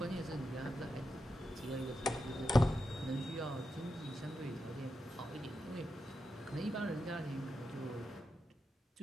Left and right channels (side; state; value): both; normal; correlation 0.87